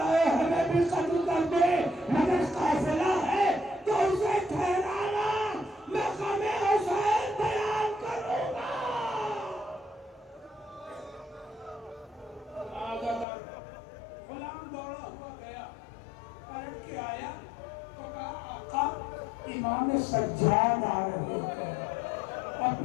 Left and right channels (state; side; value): drops out; right; at 13.2 s